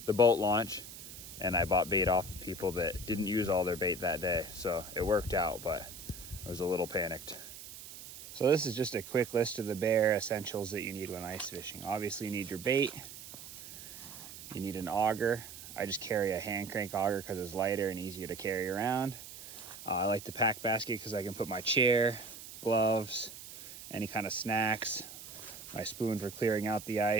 boat launch and I bought bait off of people that didn't use all their bait that day. So it worked out, but I was a little panicked. So this is just a quick list of the bare essentials that you need when ice fishing. Obviously you need your bait, you need an auger. I just carry a hand crank auger because it's lighter and easier to carry around. I like the pack basket because I can put my chair, gloves, any kind of snacks, my spoon for clearing out the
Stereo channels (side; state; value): right; noise; hiss, 14 dB below the sound